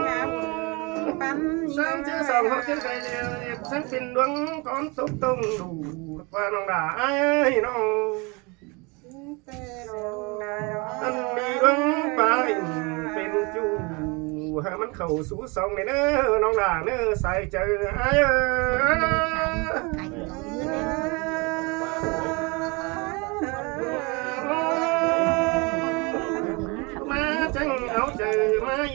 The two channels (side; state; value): left; quieter; 28.4 dB